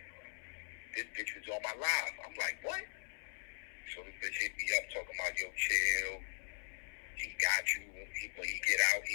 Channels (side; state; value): right; silent; 51 dB below the other